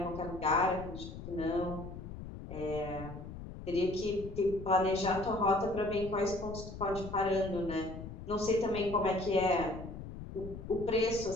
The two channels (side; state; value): left; noise; rumble, 10 dB below the sound